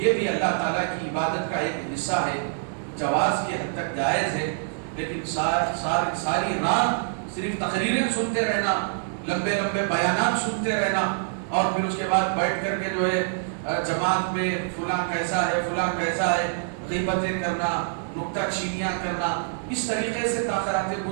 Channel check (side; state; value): left; silent; digital silence